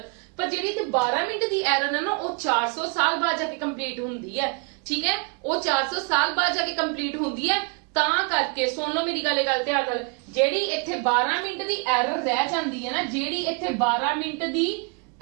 पर जेड़ी इत्थे 12 मिनट दी एरर है ना, वो 400 साल बाद जाके कंप्लीट हुंदी है, ठीक है, वो 400 साल बाद जाके कंप्लीट हुंदी है। ਤਾਂ ਕਰਕੇ सुन लो मेरी गल ध्यान नाल, जेड़ी इत्थे 12 मिनट दी एरर रह जांदी है ना, जेड़ी इत्थे 12 मिनट दी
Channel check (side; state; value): left; quieter; 34.6 dB